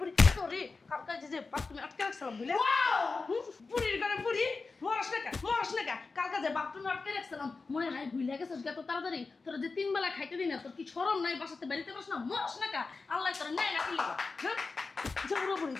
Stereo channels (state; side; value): quieter; right; 4.1 dB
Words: বুড়ি তোরে কালকে যে বাপ তুমি আটকে রাখছিলাম বুঝলে বুড়ির ঘরে বুড়ি মরস না কালকে যে বাপ তুমি আটকে রাখছিলাম মনে নাই ভুলে গেছিস এত তাড়াতাড়ি তোর যে 3 বেলা খাইতে দিই না তোর কি শরম নাই বাসাতে বাড়িতে বস না মরস না আল্লাহ তোর নাই না কি হ্যাঁ যে বুড়ি